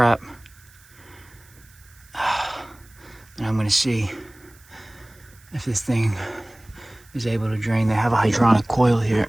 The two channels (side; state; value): right; noise; hiss, 27 dB below the sound